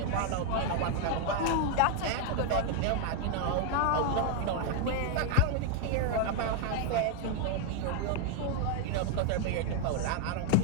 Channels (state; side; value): different; both; correlation 0.00